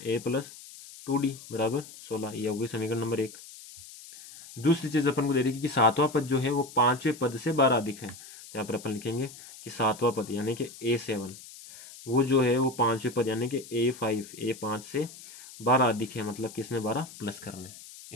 प्लस 2d बराबर 16। ये होगी समीकरण नंबर 1। दूसरी चीज अपन को दे रही है कि सातवां पद जो है वो पांचवें पद से 12 अधिक है। तो यहाँ पर अपन लिखेंगे कि सातवां पद यानी कि a7 वो जो है वो पांचवें पद यानी कि a5 से 12 अधिक है, मतलब कि इसमें 12 प्लस करने,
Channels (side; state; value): left; noise; hiss, 17 dB below the sound